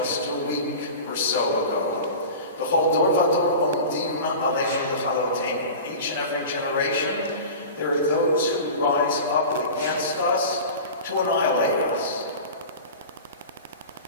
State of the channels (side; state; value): both; inverted; correlation -0.34